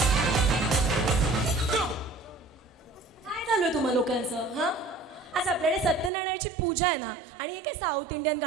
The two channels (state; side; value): drops out; left; at 6.1 s